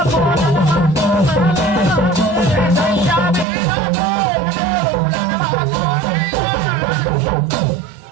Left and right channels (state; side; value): drops out; left; at 3.5 s